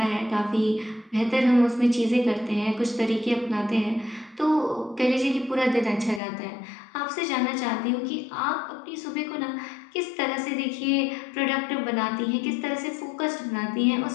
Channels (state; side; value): drops out; right; at 6.2 s